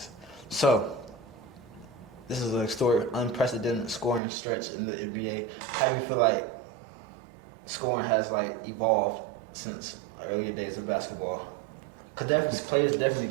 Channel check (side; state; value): left; drops out; at 4.2 s